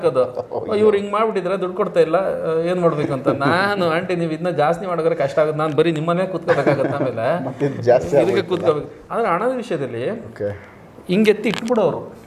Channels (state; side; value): identical; both; correlation 1.00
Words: ಇವ್ರು ಹಿಂಗೆ ಮಾಡ್ಬಿಟ್ಟಿದ್ರೆ ದುಡ್ಡು ಕೊಡ್ತಾ ಇಲ್ಲ, ಏನು ಮಾಡ್ಬೇಕು ಅಂತ. ನಾನು ಆಂಟಿ ನೀವು ಇದನ್ನ ಜಾಸ್ತಿ ಮಾಡೋದ್ರೆ ಕಷ್ಟ ಆಗುತ್ತೆ, ನಾನು ಬರೀ ನಿಮ್ಮನೆ ಕೂತ್ಕೋಬೇಕಾಗತ್ತೆ, ಆಮೇಲೆ ಇದಕ್ಕೆ ಕೂತ್ಕೋಬೇಕು. ಆದರೆ ಹಣದ ವಿಷಯದಲ್ಲಿ ಹಿಂಗೆತ್ತಿ ಇಟ್ಬಿಡೋರು,